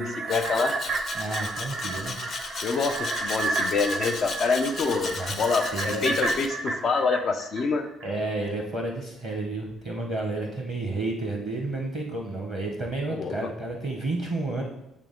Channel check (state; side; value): normal; both; correlation 0.70